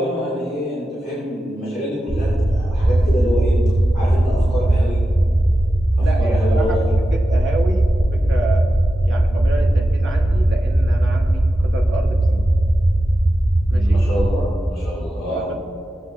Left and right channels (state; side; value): normal; both; correlation 0.92